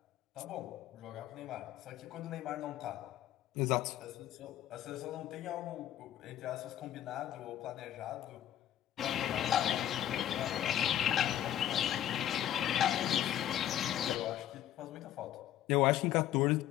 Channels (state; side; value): quieter; right; 11.9 dB